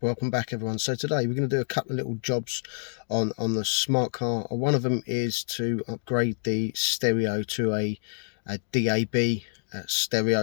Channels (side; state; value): right; silent; 57 dB below the other